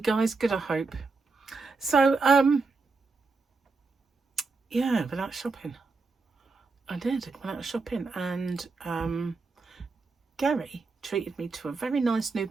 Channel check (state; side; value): quieter; left; 4.1 dB